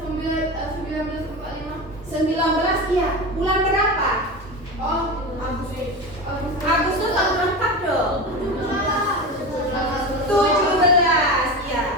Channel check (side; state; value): both; normal; correlation 0.25